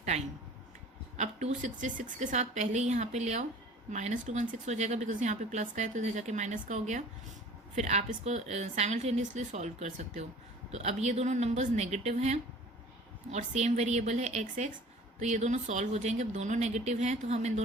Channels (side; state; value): both; normal; correlation 0.46